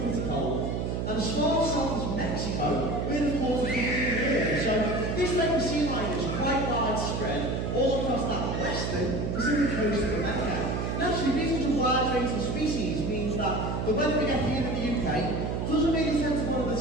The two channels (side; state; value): right; noise; hum, 1 dB below the sound